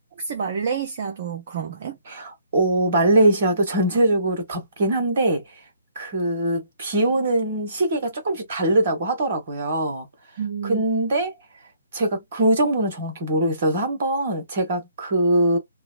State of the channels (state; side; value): inverted; both; correlation -0.64